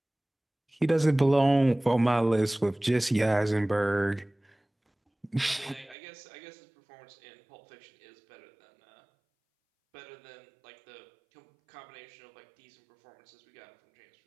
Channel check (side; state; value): left; drops out; at 6.0 s